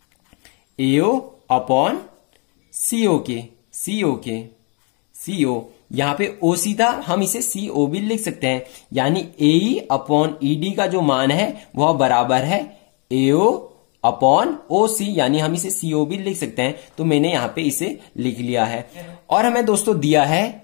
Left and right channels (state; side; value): quieter; right; 35.7 dB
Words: AO अपॉन CO यहां पे O सीधा हम इसे CO भी लिख सकते हैं, यानी AE अपॉन ED का जो मान है वह बराबर है AO अपॉन OC, यानी हम इसे CO भी लिख सकते हैं। तो मैंने यहां पे इसे लिख लिया है। और हमें दोस्तों दिया है,